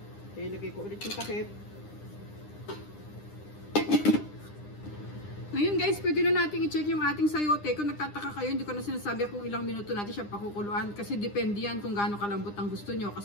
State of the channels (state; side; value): late; right; 9.9 ms